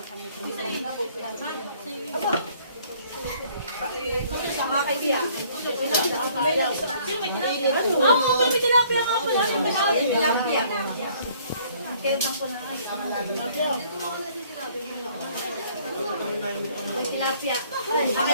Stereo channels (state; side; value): inverted; both; correlation -0.60